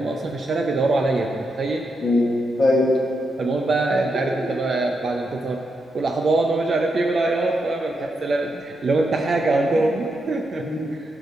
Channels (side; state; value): both; normal; correlation 0.83